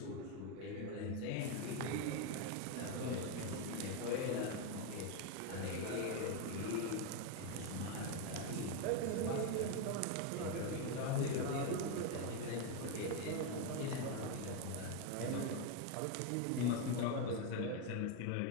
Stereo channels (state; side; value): different; both; correlation 0.02